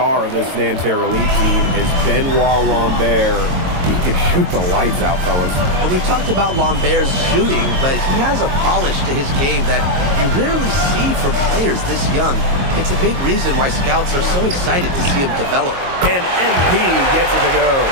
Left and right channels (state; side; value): late; left; 22 ms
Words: of this Nanterre elite team is Benoit Lambert. He can shoot the lights out, fellas. And we've talked about Lambert's shooting, but he has a polish to his game that you rarely see from players this young. It's a big reason why scouts are so excited to see him develop. And MP gets it to go.